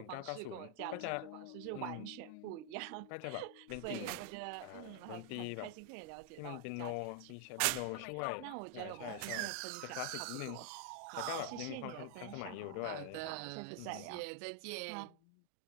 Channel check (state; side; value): different; both; correlation 0.00